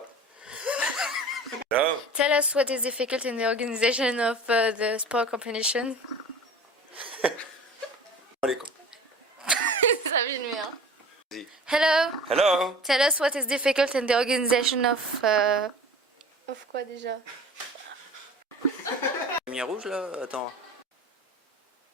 No. Tell us what is difficult in the organization of the sport competition. Alaikum. Ça vient de hein. Hello. Hello. Tell us what is difficult in the organization of... Of quoi déjà? Lumière rouge là, attends.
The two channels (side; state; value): both; normal; correlation 0.40